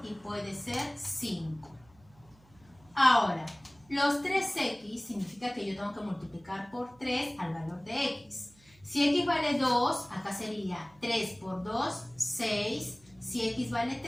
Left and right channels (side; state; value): right; noise; hum, 28 dB below the sound